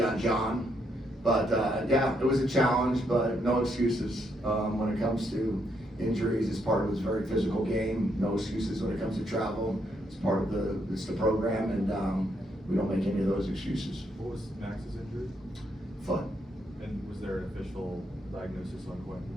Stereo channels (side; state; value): both; normal; correlation 0.76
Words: on John. But yeah, it was a challenge, but no excuses when it comes to injuries. It's part of this very physical game. No excuses when it comes to travel. It's part of the program, and we don't make any of those excuses. What was Max's injury? Foot. And was there an official diagnosis on